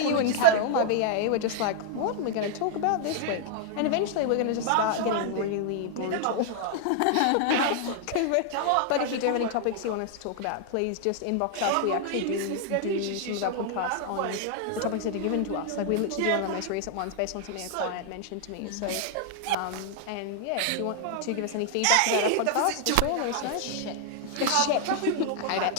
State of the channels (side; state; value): both; different; correlation 0.00